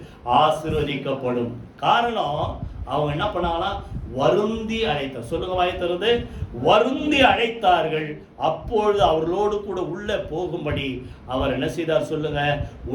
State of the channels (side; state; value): both; identical; correlation 1.00